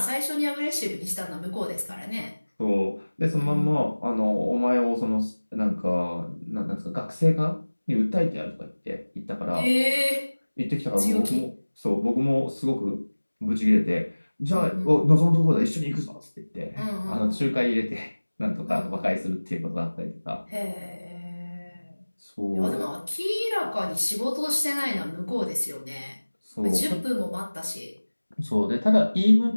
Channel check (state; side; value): inverted; both; correlation -1.00